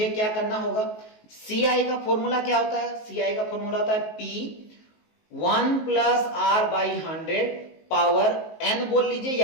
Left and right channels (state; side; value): late; right; 19 ms